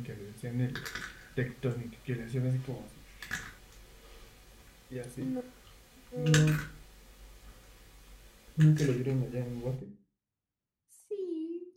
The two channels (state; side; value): identical; both; correlation 1.00